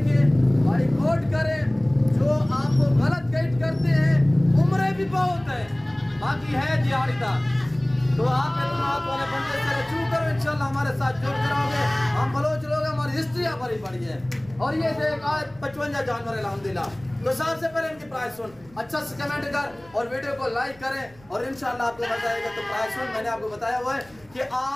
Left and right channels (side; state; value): right; noise; rumble, 26 dB below the sound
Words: भाई कोट करें। जो आपको गलत गाइड करते हैं, उम्रें भी बहुत है, बाकी है दिहाड़ीदार। तो आप वाले बंदे से रजू करो, इंशाल्लाह हमारे साथ जुड़ करोगे। हम बलोच लोग, हमारी हिस्ट्री भरी पड़ी है। और ये देख आज 55 जानवर अल्हम्दुलिल्लाह। तो सबसे पहले इनकी प्राइस सुन, अच्छा से कमेंट कर और वीडियो को लाइक करें और इंशाल्लाह आपको मजा आएगा। तो प्राइस सुन, मैंने आपको बताया हुआ है कि